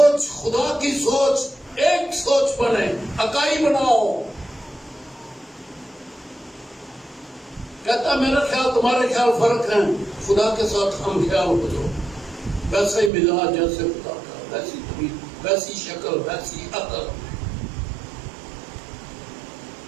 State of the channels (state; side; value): drops out; left; at 13.1 s